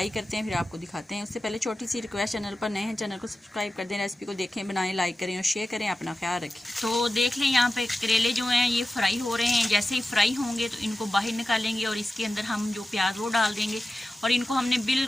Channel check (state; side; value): normal; both; correlation 0.94